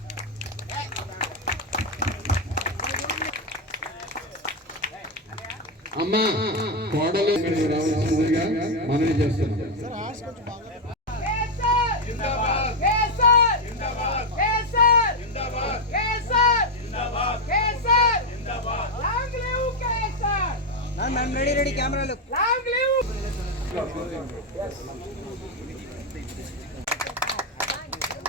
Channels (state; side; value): normal; both; correlation 0.05